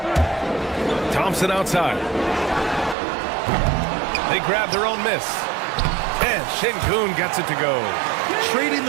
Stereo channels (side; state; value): left; drops out; at 3.0 s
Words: Thompson outside. They grab their own miss. And Şengün gets it to go. Trading